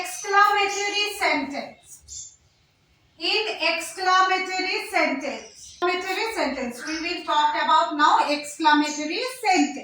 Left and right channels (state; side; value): identical; both; correlation 1.00